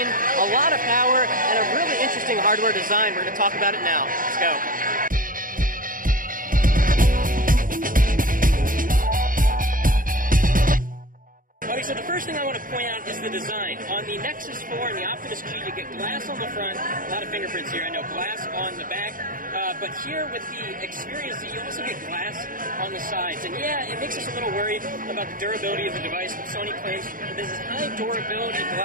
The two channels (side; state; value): left; late; 0.40 ms